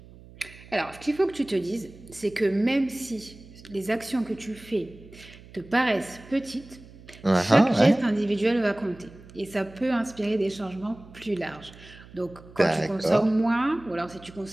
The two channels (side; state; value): right; noise; hum, 20 dB below the sound